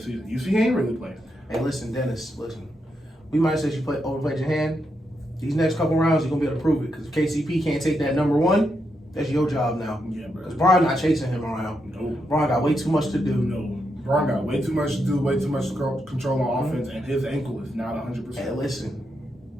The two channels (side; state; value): both; normal; correlation 0.82